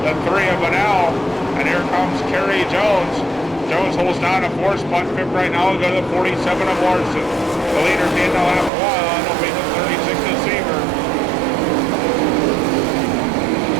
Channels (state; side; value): drops out; left; at 8.7 s